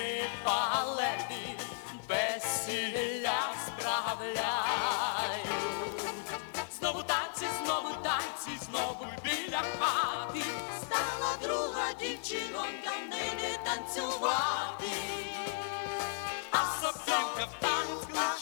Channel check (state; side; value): silent; right; 55 dB below the other